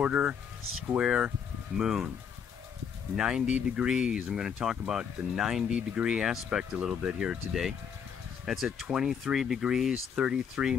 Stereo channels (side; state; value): right; quieter; 7.3 dB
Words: square moon. 90 degrees. I'm going to talk about the 90-degree aspect a little bit here today. That's at 23 degrees, 33